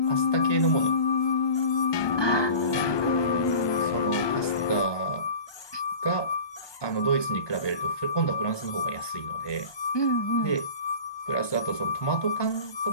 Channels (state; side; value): late; right; 1.2 ms